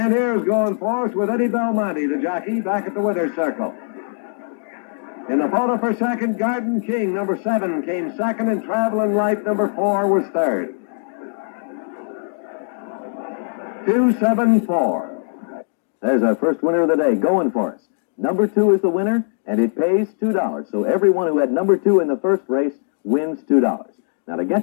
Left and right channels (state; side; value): silent; right; digital silence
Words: here's Going Force with Eddie Belmonte, the jockey, back at the winner's circle. In the photo for second, Garden King, number 7, came second, and Traveling Light, number 4, was third. 274. There's our first winner of the day, Going Force. Number 2 is the winner, and it pays $2. So everyone who had number 2 in the first race wins $2. Now, to